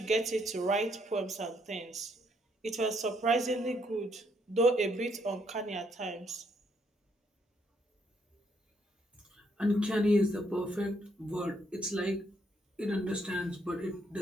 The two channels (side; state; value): both; normal; correlation 0.72